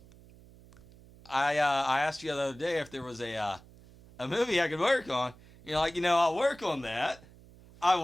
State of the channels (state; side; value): noise; right; hum, 23 dB below the sound